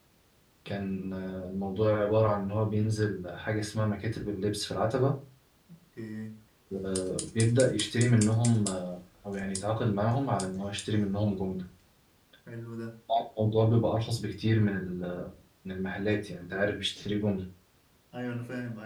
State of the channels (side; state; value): both; identical; correlation 1.00